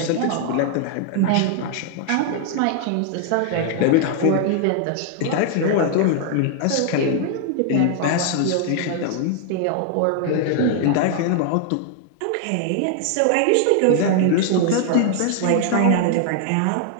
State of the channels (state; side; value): different; both; correlation 0.00